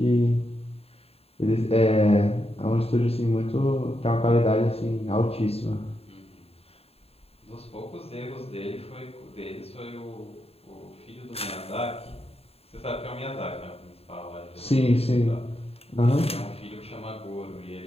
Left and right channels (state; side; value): late; right; 0.29 ms